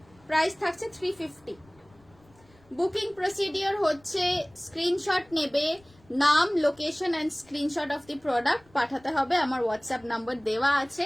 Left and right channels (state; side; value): noise; left; rumble, 29 dB below the sound